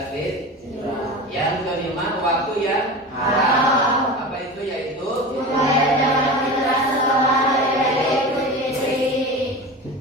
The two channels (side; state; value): both; normal; correlation 0.30